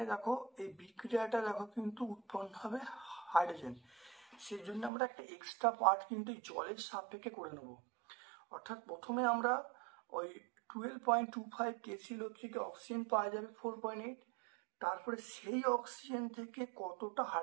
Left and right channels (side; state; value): left; drops out; at 4.9 s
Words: দেখো এই বিক্রিয়াটা দেখো কিন্তু উৎপন্ন হবে হাইড্রোজেন, সেই জন্য আমরা একটা এক্সট্রা পার্ট কিন্তু জলের সাপেক্ষে করে নেব। অর্থাৎ প্রথমে আমরা ওই 12.25 KClO3 থেকে অক্সিজেন পাওয়া যাবে 4.8, তারপরে সেই অক্সিজেন থেকে কতটা